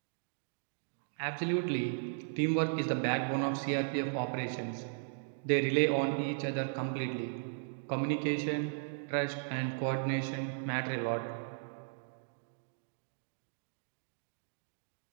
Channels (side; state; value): left; silent; digital silence